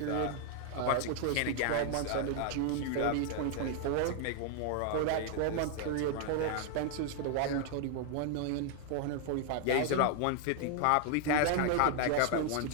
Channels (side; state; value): both; different; correlation 0.00